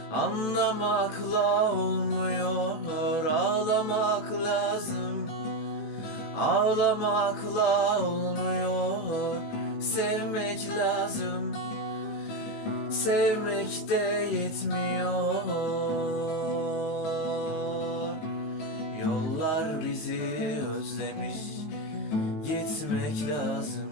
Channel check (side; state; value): right; late; 19 ms